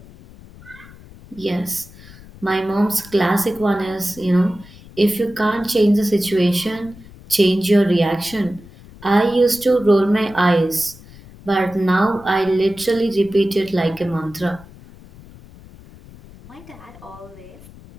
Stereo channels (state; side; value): noise; left; rumble, 21 dB below the sound